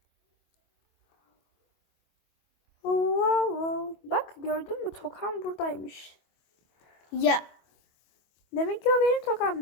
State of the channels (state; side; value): late; right; 25 ms